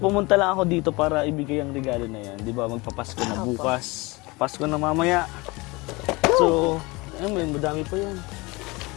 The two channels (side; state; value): right; quieter; 24.3 dB